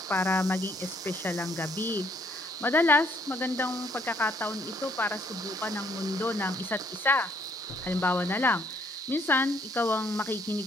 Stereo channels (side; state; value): both; normal; correlation 0.67